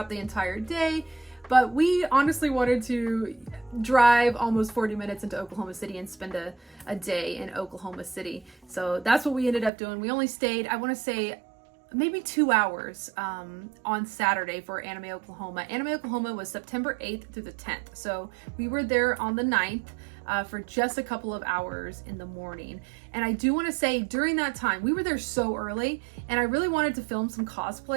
the entire day, but we honestly wanted to drive almost 40 minutes into Oklahoma City and spend a day in Oklahoma City. So that's what we ended up doing. We only stayed, I want to say, maybe 2 hours on Saturday for Anime Oklahoma. Anime Oklahoma was September 8th through the 10th. So we were there on the 9th for just a couple of hours in the morning. And I do want to say during that time, we were there so early, and I really wanted to film some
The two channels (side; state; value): left; drops out; at 9.7 s